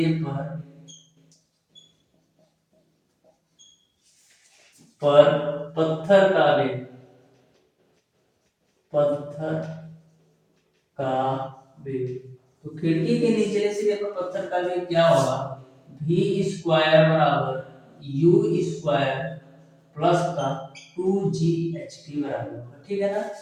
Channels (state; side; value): identical; both; correlation 1.00